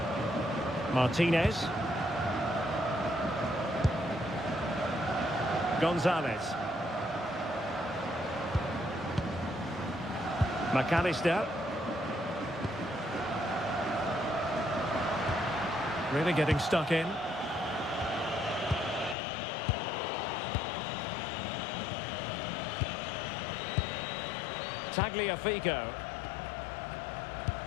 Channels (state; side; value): drops out; right; at 19.2 s